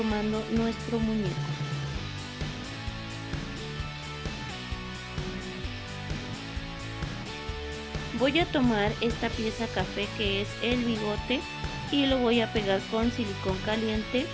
nuestro muñeco. Voy a tomar esta pieza café que es el bigote y lo voy a pegar con silicón caliente.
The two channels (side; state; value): both; identical; correlation 1.00